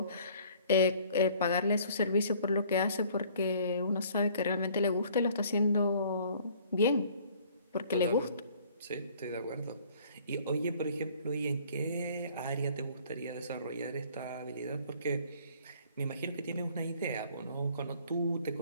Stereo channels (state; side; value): inverted; both; correlation -0.55